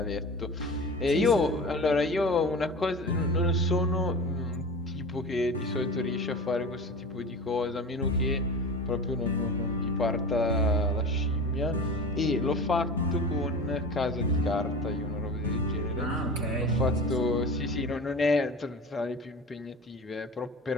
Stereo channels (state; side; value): normal; both; correlation 0.34